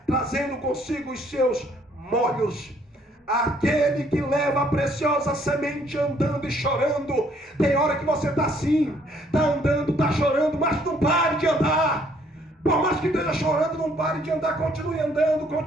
trazendo consigo os seus molhos. Aquele que leva a preciosa semente andando e chorando. Tem hora que você está assim, está andando, está chorando, mas não pare de andar. Por mais que esteja chorando, não pare de andar, continue andando,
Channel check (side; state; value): both; normal; correlation 0.64